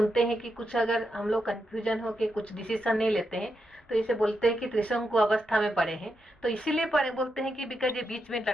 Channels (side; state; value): both; normal; correlation 0.84